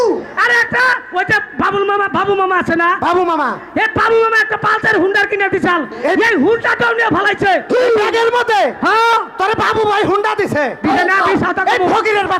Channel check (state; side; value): identical; both; correlation 1.00